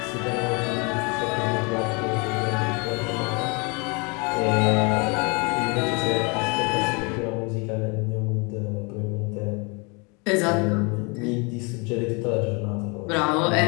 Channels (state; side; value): quieter; right; 31.0 dB